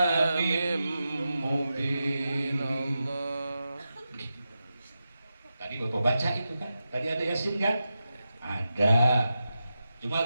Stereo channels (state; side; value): inverted; both; correlation -0.90